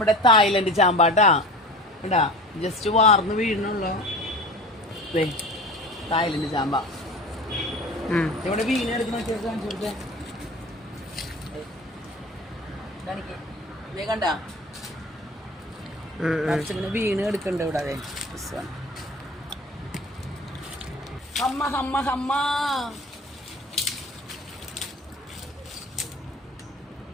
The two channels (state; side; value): normal; both; correlation 0.38